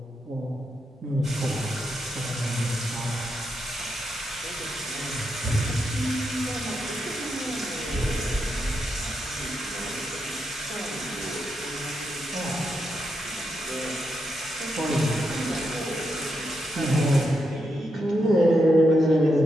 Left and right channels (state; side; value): normal; both; correlation 0.83